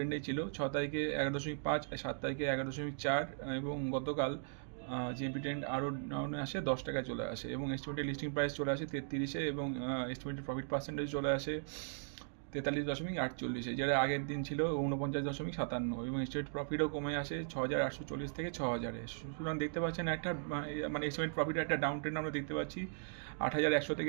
ছিল। 6 তারিখে 11.5, 7 তারিখে 11.4 এবং গতকাল জিএমপি ট্রেন্ড আরও ডাউনে আসে, 10 টাকায় চলে আসে এবং এস্টিমেটেড লিস্টিং প্রাইস চলে আসে 33-এ এবং এস্টিমেটেড প্রফিট পার্সেন্টেজ চলে আসে 43.48, যেটা আগের দিন ছিল 49.57 এবং স্টেট প্রফিটও কমে আসে 6,840 থেকে 6,000-এ। সুতরাং দেখতে পাচ্ছেন একটা মানে এস্টিমেট প্রফিটের একটা ডাউন ট্রেন্ড আমরা দেখতে পাচ্ছি 8,100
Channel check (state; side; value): silent; left; digital silence